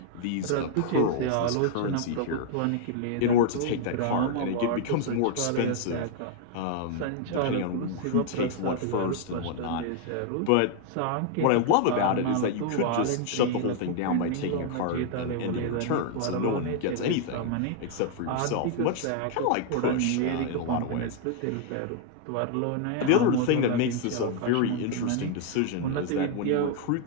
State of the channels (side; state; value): both; different; correlation 0.00